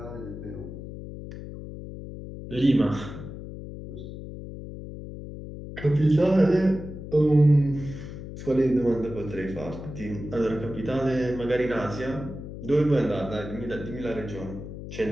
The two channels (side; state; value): left; noise; hum, 10 dB below the sound